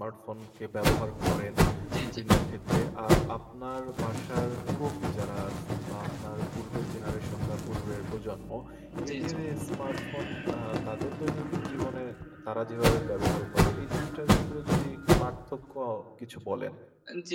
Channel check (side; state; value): both; identical; correlation 1.00